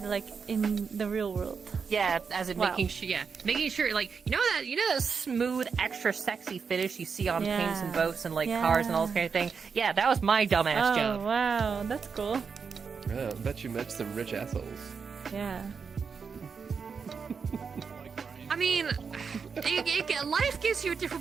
like in the real world. Yeah, as in Wow. making sure, like you know that smooth, extra sexy finish you see on paints and Yeah. boats and like cars and all this kind of thing. Yeah, that was my dumbass Oh, job. wow, that's cool. Yeah, I bet you met some rich assholes. Yeah. I mean, life gives you a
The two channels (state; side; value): quieter; left; 5.8 dB